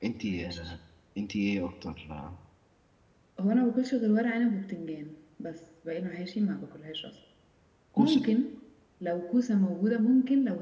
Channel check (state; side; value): identical; both; correlation 1.00